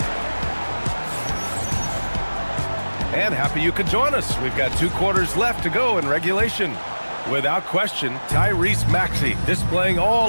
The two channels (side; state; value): both; inverted; correlation -1.00